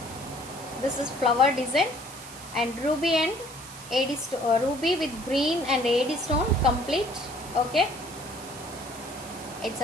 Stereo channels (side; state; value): right; noise; hiss, 16 dB below the sound